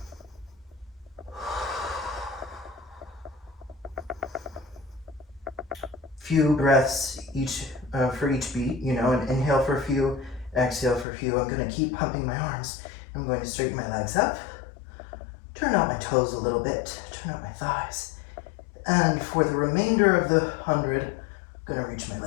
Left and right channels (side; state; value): right; drops out; at 11.1 s